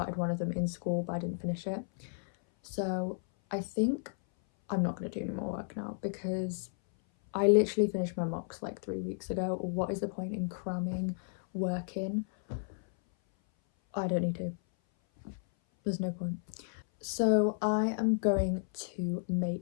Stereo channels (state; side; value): silent; right; 56 dB below the other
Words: one of them in school but I didn't finish it. So I think I'm not going to do any more work now because I literally finished my mocks like 3 weeks ago. What is the point in cramming work in? I don't need to. There's no point. So I am going to